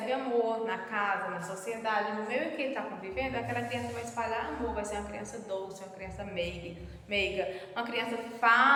amor na casa, na sociedade, no meio em que ele está convivendo, aquela criança vai espalhar amor, vai ser uma criança doce, uma criança meiga, uma criança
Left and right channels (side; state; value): both; identical; correlation 1.00